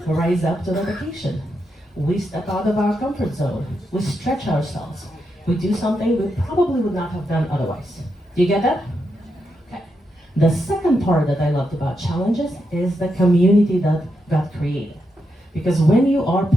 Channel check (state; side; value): normal; both; correlation 0.84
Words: rise up to the occasion. We step out of our comfort zone. We stretch ourselves. We do something we probably would not have done otherwise. Do you get that? Okay. The second part that I loved about challenges is the community that got created. Because when you are